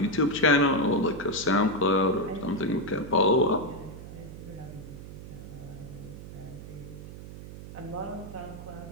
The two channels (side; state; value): right; noise; hum, 13 dB below the sound